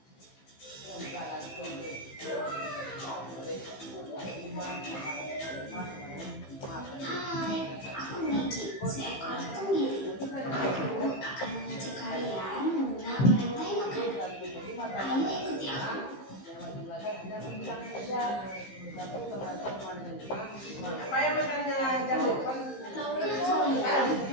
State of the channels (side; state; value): right; late; 15 ms